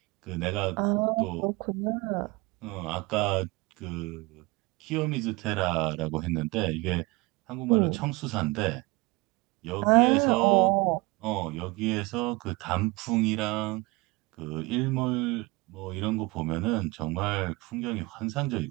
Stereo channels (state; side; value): quieter; left; 23.6 dB